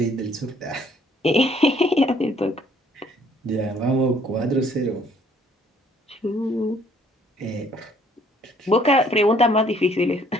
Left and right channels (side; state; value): both; normal; correlation 0.62